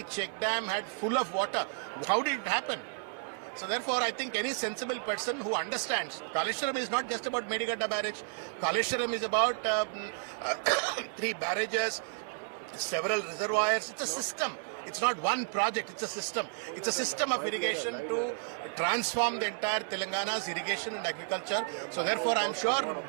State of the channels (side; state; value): left; silent; digital silence